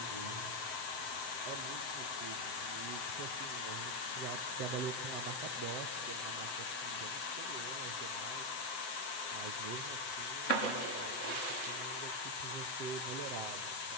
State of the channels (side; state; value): right; late; 7.8 ms